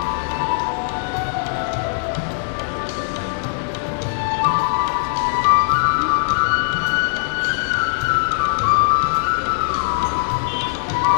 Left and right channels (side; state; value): right; silent; digital silence